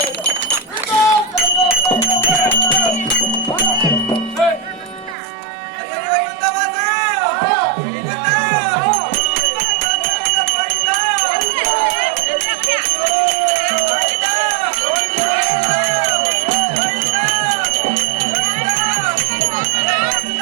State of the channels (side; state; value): left; drops out; at 5.2 s